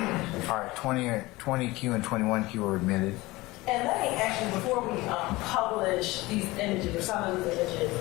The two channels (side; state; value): right; quieter; 20.6 dB